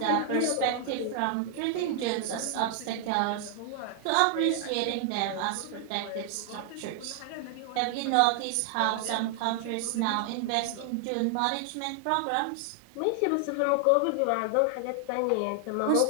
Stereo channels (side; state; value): both; different; correlation 0.00